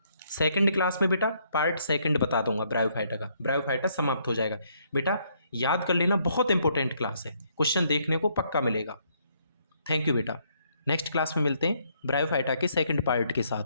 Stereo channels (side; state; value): both; inverted; correlation -0.70